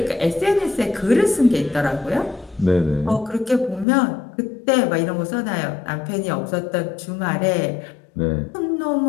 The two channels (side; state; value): right; drops out; at 3.9 s